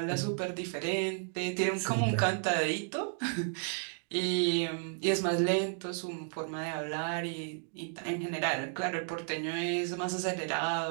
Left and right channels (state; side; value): silent; left; 56 dB below the other